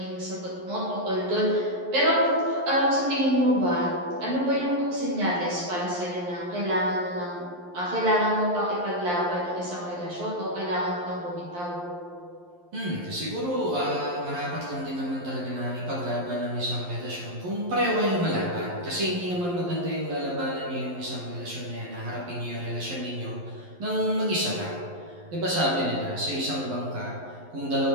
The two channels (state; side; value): late; left; 11 ms